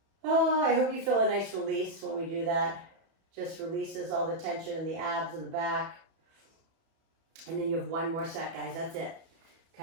Oh, I hope you feel a nice release when we do that. Just releases all the tension in the abs and the back. And then you have one more set, guys. That's it.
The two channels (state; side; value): late; left; 31 ms